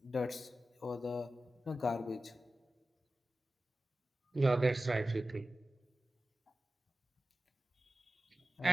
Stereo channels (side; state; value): both; normal; correlation 0.94